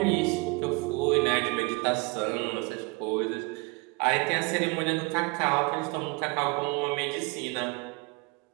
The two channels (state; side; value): quieter; left; 27.1 dB